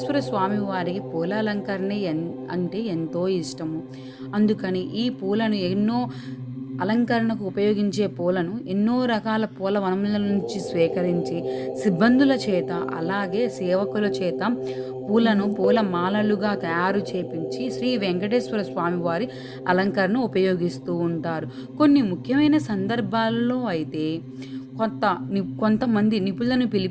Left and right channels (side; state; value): both; identical; correlation 1.00